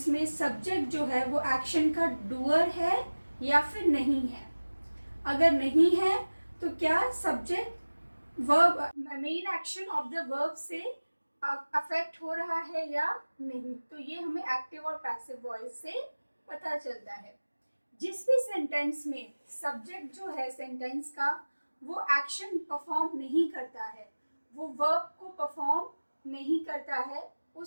में सब्जेक्ट जो है वो एक्शन का डूअर है या फिर नहीं है. अगर नहीं है तो क्या subject verb main action of the verb से अफेक्ट हो रहा है या नहीं. तो ये हमें एक्टिव और पैसिव वॉइस से पता चलता है. जिस भी सेंटेंस में सब्जेक्ट जो है सेंटेंस का वो एक्शन परफॉर्म नहीं करता है, वो वर्ब को परफॉर्म नहीं करता है,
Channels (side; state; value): both; inverted; correlation -1.00